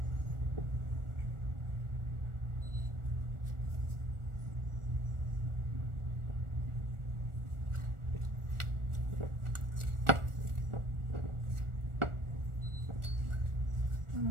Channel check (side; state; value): left; late; 1.4 ms